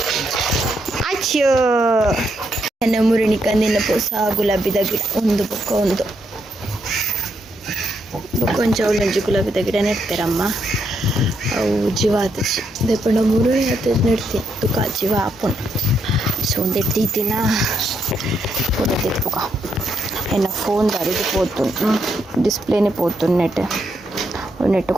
ಅಚ್ಚೋ ನನ್ನ ಮುರುಣಿ ಕಂದಿನ ಪೂಸ ಗುಲಾಬಿದ ಗಿಡ ಒಂದು ಒಂದು ಕೊಂಚ ಒಳ್ಳೊಂಜಿ ಗುಲಾಬಿದ ಗಿಡ ನೆಡ್ತಾರಮ್ಮ. ಅವು ಜೀವ ಆತಚಿ ದೇಪಂಡ ಮುರುಳಿ ಆತ ನೆಡ್ತೀನಿ ತುಕ ಜೀವ ಆಪುನ್. ಸೊ ಒಂದು ಎಟ್ಟಿನ ಫೋಟೋ ತೆತ್ಪುಕ ಎನ್ನ ಫೋನ್ ದಾರಿದು పోతుంది డిస్ప్లేనే పోతుంది నెట్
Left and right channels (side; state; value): both; normal; correlation 0.78